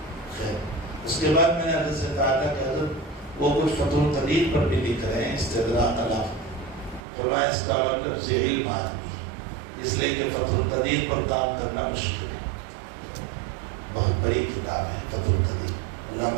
خیر اس کے بعد میں نے حضرت سے کہا تھا کہ حضرت وہ کچھ فتح القدیر پر بھی لکھ رہے ہیں استدراک علی. فرمایا اس کا مطلب ذہیل آدمی ہے، اس لیے کہ فتح القدیر پر کام کرنا مشکل ہے. بہت بڑی کتاب ہے فتح القدیر.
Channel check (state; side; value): drops out; left; at 7.0 s